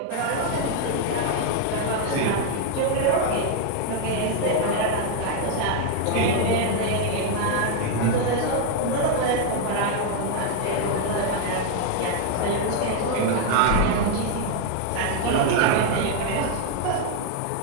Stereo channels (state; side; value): different; both; correlation 0.00